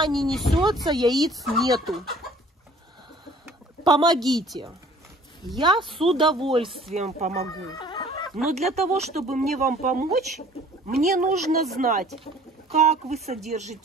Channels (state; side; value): normal; both; correlation 0.52